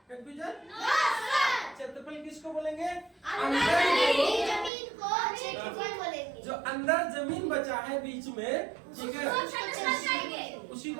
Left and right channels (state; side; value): drops out; left; at 4.7 s